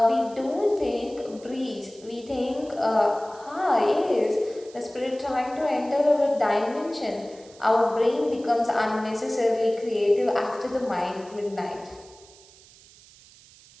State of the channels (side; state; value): right; noise; hiss, 24 dB below the sound